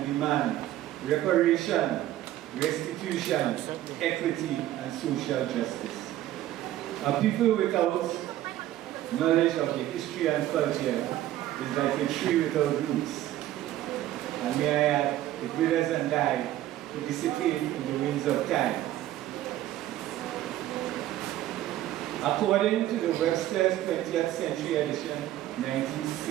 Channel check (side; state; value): left; quieter; 13.8 dB